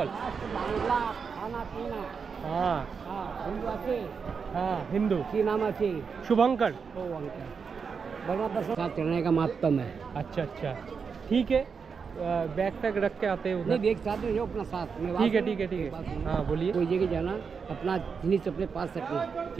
बांग्ला खाना पीना। हाँ हाँ हिंदू आते। हाँ हिंदू। की नाम आते? शुभंकर। ओ अंकल बर्मा दर्शन साथ चढ़ने का महत्व है। अच्छा अच्छा ठीक है। बैग पैक रख के आते हैं नहीं उधर। देख साथ में जो अपना साथ में। ठीक है ठीक है ठीक है। हाँ बोलिए। कोई जगह जाना अपना जिनिस अपने पास रखना।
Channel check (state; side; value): quieter; left; 5.8 dB